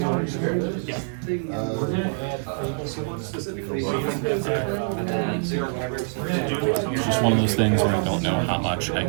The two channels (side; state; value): left; silent; digital silence